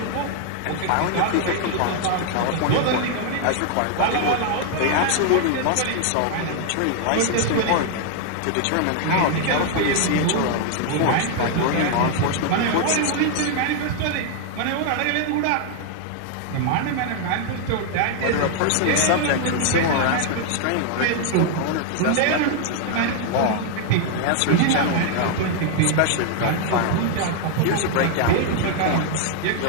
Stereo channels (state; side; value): different; both; correlation 0.00